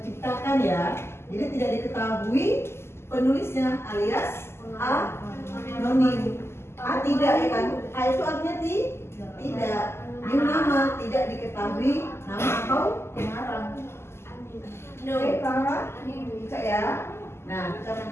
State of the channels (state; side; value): late; right; 0.12 ms